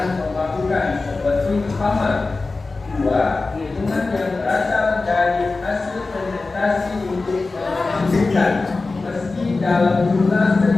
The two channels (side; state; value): right; quieter; 3.6 dB